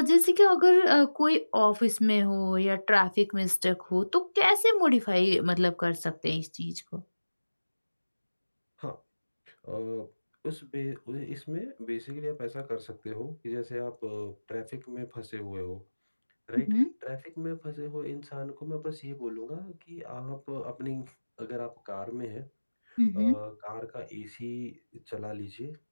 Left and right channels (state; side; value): inverted; both; correlation -1.00